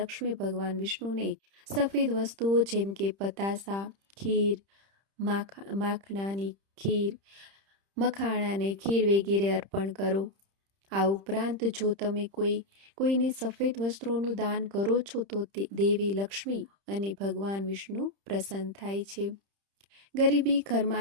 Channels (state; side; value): late; left; 30 ms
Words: ભગવાન વિષ્ણુને સફેદ વસ્તુઓ જેમ કે પતાસા, ખીર, માખણાની ખીર, મખાણાની ખીર વગેરે અર્પણ કરો. આ ઉપરાંત જો તમે કોઈને સફેદ વસ્ત્રોનું દાન કરો છો તો દેવી લક્ષ્મી અને ભગવાન વિષ્ણુ પ્રસન્ન થાય છે. ગરીબી